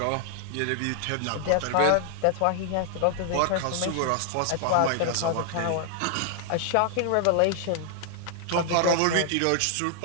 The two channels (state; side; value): different; both; correlation 0.00